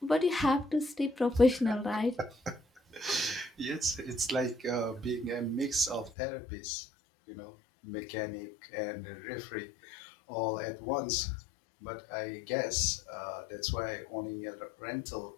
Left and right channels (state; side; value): drops out; right; at 6.1 s